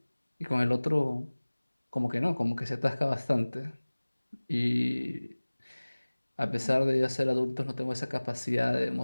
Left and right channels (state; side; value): inverted; both; correlation -1.00